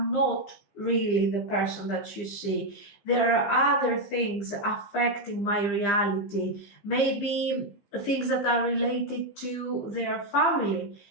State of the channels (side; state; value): right; late; 15 ms